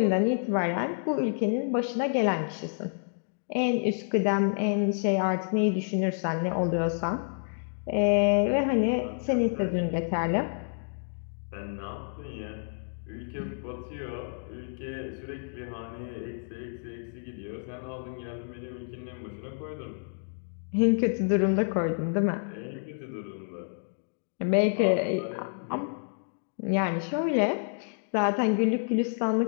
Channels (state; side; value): silent; right; digital silence